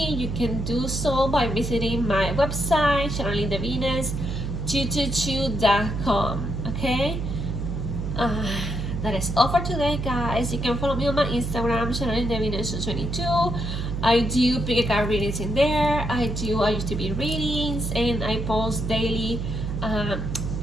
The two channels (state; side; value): noise; right; hum, 3 dB below the sound